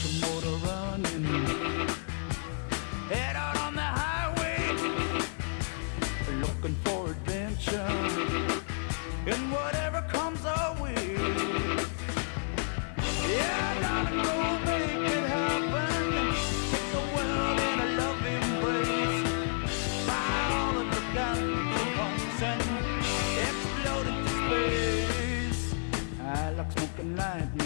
your motor running. Head out on the highway, looking for adventure. And whatever comes our way, yeah, darling, go make it happen. Take the world in a loving embrace. Fire all of the guns at once and explode into space. I like smoking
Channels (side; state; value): right; silent; 57 dB below the other